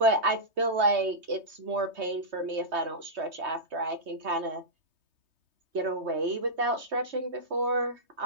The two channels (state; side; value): late; left; 3.2 ms